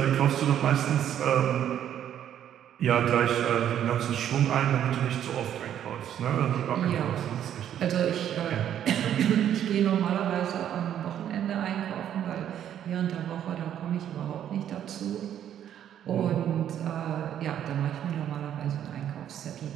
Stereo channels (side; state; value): left; quieter; 10.2 dB